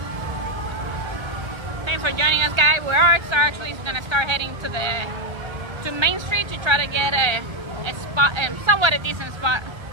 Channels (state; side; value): late; left; 1.3 ms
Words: Thanks for joining us, guys. We are actually going to start heading to Main Street to try to get a spot, somewhat a decent spot.